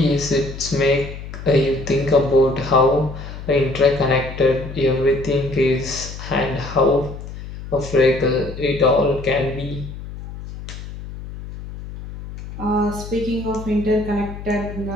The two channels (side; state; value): left; noise; hum, 11 dB below the sound